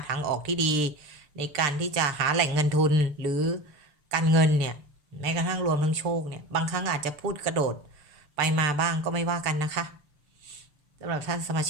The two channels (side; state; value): left; late; 6.7 ms